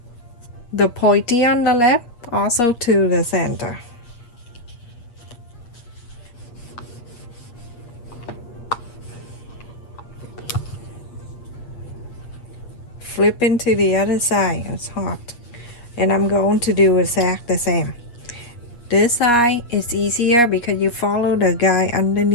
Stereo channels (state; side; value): late; right; 8.4 ms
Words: the pointy on the left also to the center. Flip into the other side. It's hot. And I'm going to do exactly the same. This side is easier because you follow the guy